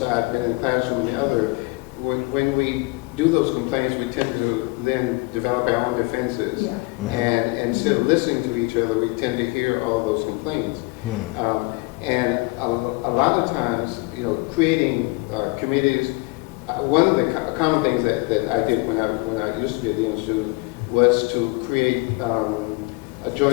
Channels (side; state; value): right; quieter; 25.9 dB